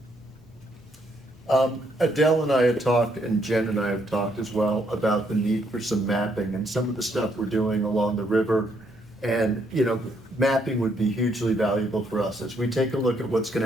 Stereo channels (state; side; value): normal; both; correlation 0.72